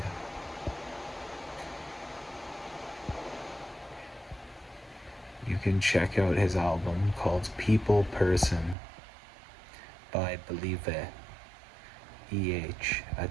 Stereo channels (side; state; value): left; drops out; at 8.8 s